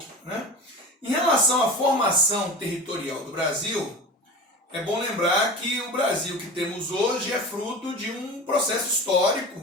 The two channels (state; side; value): normal; both; correlation 0.33